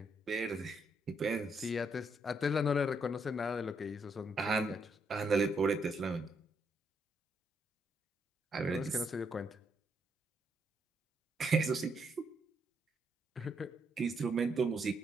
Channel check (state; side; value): normal; both; correlation 0.76